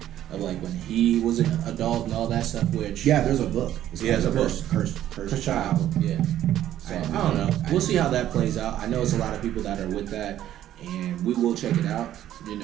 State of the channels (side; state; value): left; quieter; 12.1 dB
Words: of like when he was an adult and all that stuff. Which there's a book. There's a book. Cursed Child. Yeah. So I don't know. We'll see how that plays out. I know it's a lot of people that are with that, and we will check it out. You